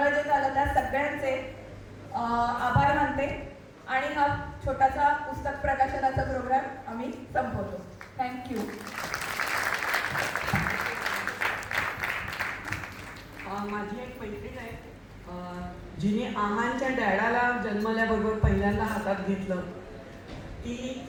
जे झालं त्या सगळ्यांचे आभार मानते. आणि हा छोटासा पुस्तक प्रकाशनाचा प्रोग्राम आम्ही संपवतो. थँक्यू. माझी एक मैत्रीण आहे, जिने आहांच्या डॅडाला जन्मल्याबरोबर पहिल्यांदा हातात घेतलं. ती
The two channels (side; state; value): both; identical; correlation 1.00